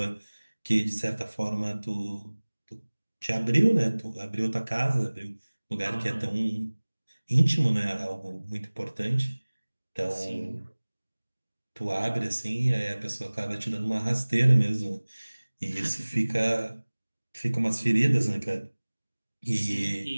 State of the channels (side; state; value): both; inverted; correlation -1.00